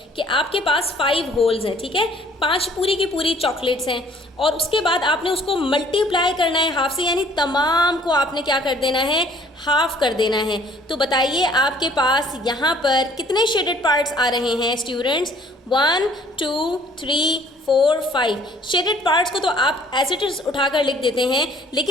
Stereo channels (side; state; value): both; normal; correlation 0.57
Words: कि आपके पास 5 होल्स हैं, ठीक है, 5 पूरी की पूरी चॉकलेट्स हैं और उसके बाद आपने उसको मल्टीप्लाई करना है हाफ से, यानी तमाम को आपने क्या कर देना है, हाफ कर देना है। तो बताइए आपके पास यहाँ पर कितने शेडेड पार्ट्स आ रहे हैं स्टूडेंट्स? 1 2 3 4 5 शेडेड पार्ट्स को तो आप एज इट इज उठाकर लिख देते हैं,